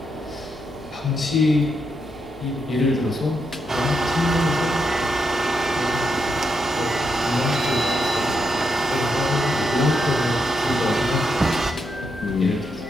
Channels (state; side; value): normal; both; correlation 0.82